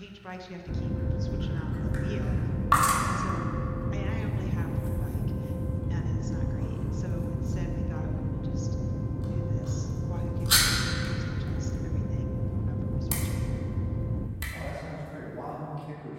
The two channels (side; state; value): both; identical; correlation 1.00